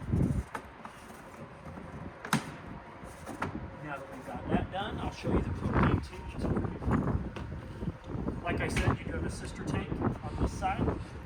Now that we've got that done, I'll show you the propane tanks over here. Like I said, you do have a sister tank on this side,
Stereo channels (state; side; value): identical; both; correlation 1.00